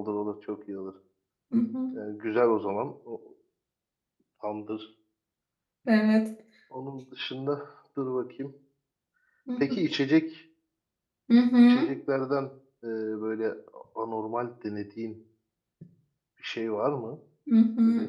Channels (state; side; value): identical; both; correlation 1.00